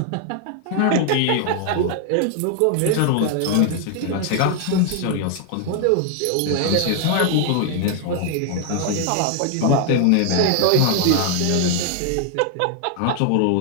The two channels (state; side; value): different; both; correlation 0.00